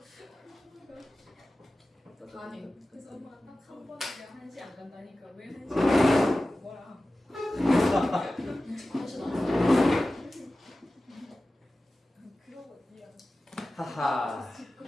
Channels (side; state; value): both; normal; correlation 0.95